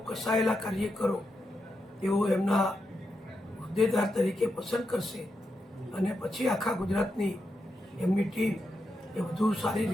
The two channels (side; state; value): both; normal; correlation 0.85